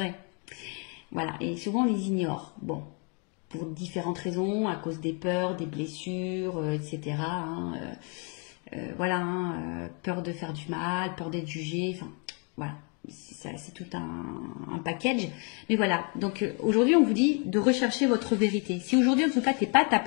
Voilà, et souvent, on les ignore. Bon, pour différentes raisons, à cause des peurs, des blessures, etc. Peur de faire du mal, peur d'être jugé, Voilà, c'est tout un package. Mais voilà, donc aujourd'hui, on vous dit de rechercher votre vérité. Si aujourd'hui, en tout cas, tu n'es pas à ta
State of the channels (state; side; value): quieter; right; 36.5 dB